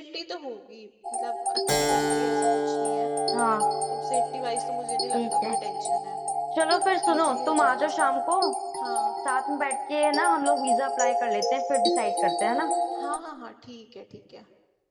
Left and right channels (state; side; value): identical; both; correlation 1.00